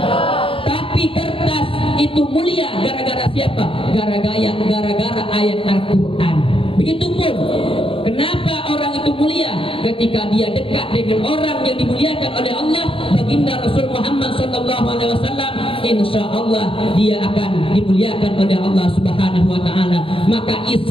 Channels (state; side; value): late; right; 0.26 ms